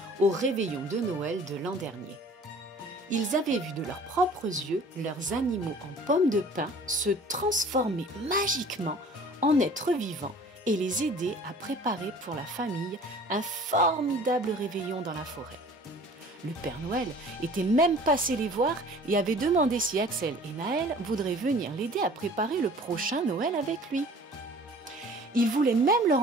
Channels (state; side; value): normal; both; correlation 0.48